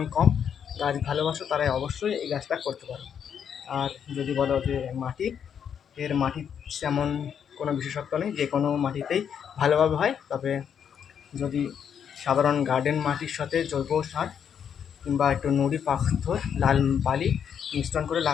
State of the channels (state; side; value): quieter; right; 8.1 dB